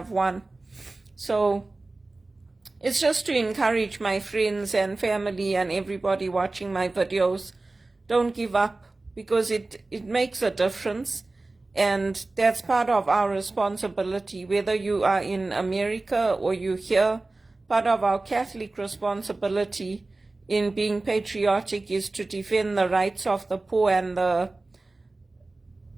one. So it's just to encourage my friends and family and everybody watching my videos. Don't give up, because it makes a difference, and that's part of our responsibility, whether you are in America or you're here. Part of our Catholic responsibility in being patriotic is to defend the rights of the poor and the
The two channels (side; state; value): left; quieter; 3.2 dB